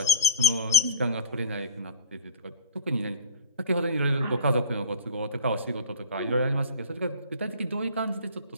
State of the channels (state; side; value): inverted; both; correlation -0.36